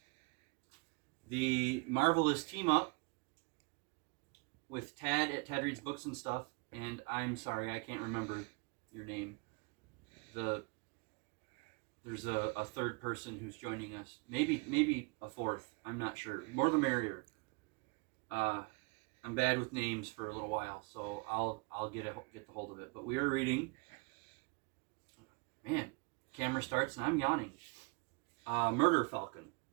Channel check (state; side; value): quieter; left; 29.7 dB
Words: the Marvelous Team Up with Tad at Tad Reads Books and Stuff, and I'm sorry, I can't remember your name. There's a third person who's joining us. Maybe a fourth. I'm not sure. More the merrier. I'm bad with names for a little while, so I'll get the hold of it. But we are reading. Man, camera starts and I'm yawning. Murder Falcon